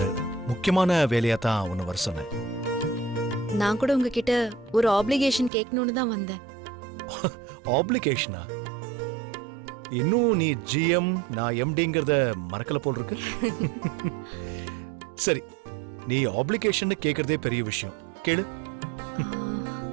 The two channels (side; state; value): left; drops out; at 5.5 s